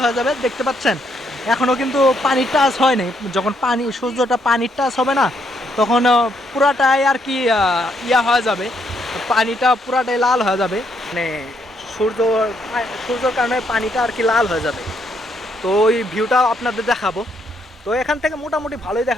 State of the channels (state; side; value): normal; both; correlation 0.74